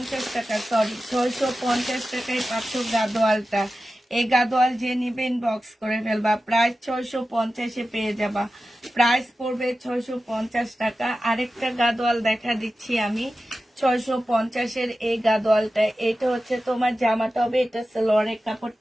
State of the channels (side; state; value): both; normal; correlation 0.94